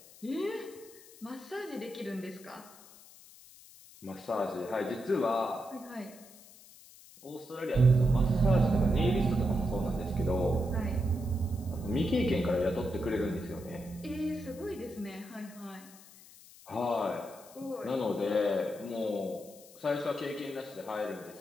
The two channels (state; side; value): noise; left; hiss, 21 dB below the sound